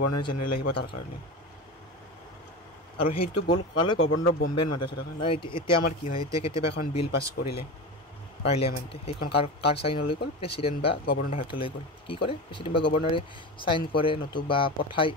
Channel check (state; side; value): normal; both; correlation 0.25